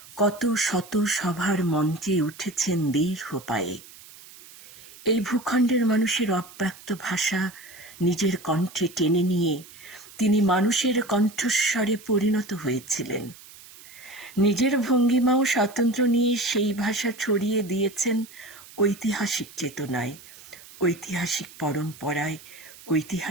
কত শত সভার মঞ্চে উঠেছেন দীর্ঘ পায়ে। এই ভূখণ্ডের মানুষের অব্যক্ত ভাষা নিজের কণ্ঠে টেনে নিয়ে তিনি মানুষের কণ্ঠস্বরে পরিণত হয়েছিলেন। নিজের ভঙ্গিমাও স্বাতন্ত্র্য নিয়ে সেই ভাষা ছড়িয়ে দিয়েছেন ঐতিহাসিক চেতনায়, ঐতিহাসিক পরম্পরায়,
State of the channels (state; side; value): noise; right; hiss, 20 dB below the sound